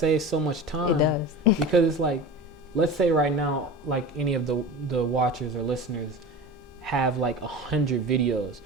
so much time. It does. Because it's like, let's say right now, like any of the watchers or listeners have like 100 videos,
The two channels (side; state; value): both; normal; correlation 0.32